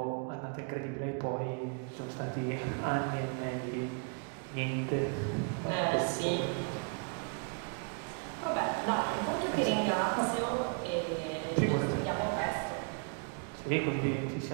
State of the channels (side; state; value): left; quieter; 38.2 dB